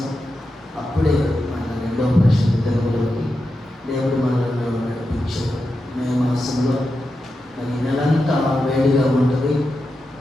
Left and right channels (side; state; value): both; normal; correlation 0.89